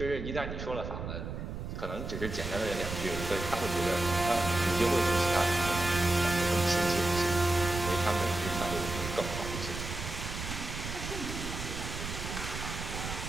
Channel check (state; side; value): noise; right; rumble, 6 dB below the sound